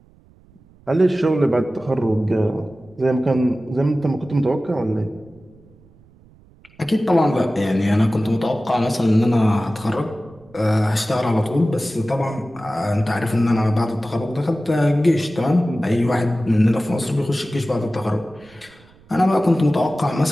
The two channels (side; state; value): right; noise; rumble, 28 dB below the sound